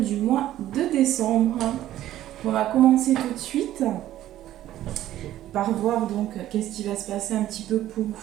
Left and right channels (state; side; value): quieter; left; 13.3 dB